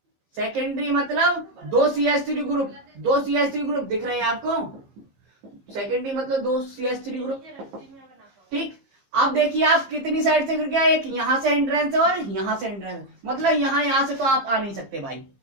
सेकेंडरी मतलब 2 CH3 ग्रुप, 2 CH3 ग्रुप दिख रहे हैं आपको, सेकेंडरी मतलब 2 CH3 ग्रुप, ठीक। अब देखिए आप कितनी साइड से गिर गया, एक यहां से हिंड्रेंस है और यहां से हिंड्रेंस, मतलब यहां से तो आप आ नहीं सकते भाई,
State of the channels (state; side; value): late; left; 15 ms